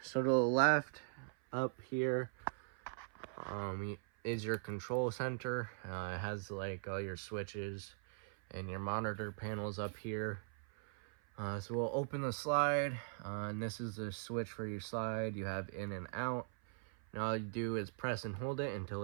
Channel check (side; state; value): left; silent; 51 dB below the other